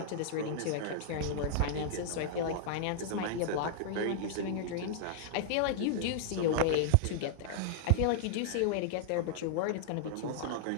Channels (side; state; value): both; different; correlation -0.01